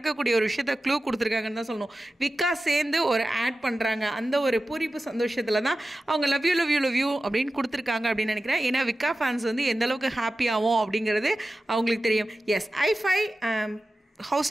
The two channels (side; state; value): both; normal; correlation 0.94